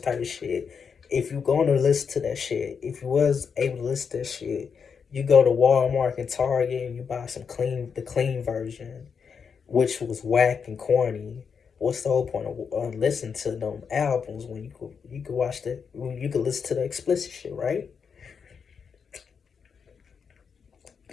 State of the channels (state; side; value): quieter; right; 6.3 dB